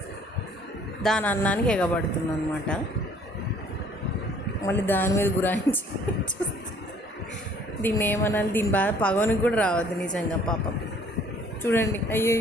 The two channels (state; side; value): normal; both; correlation 0.57